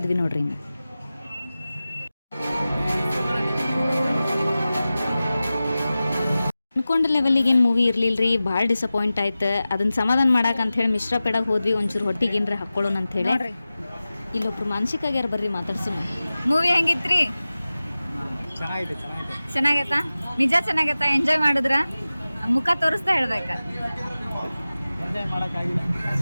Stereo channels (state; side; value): inverted; both; correlation -0.96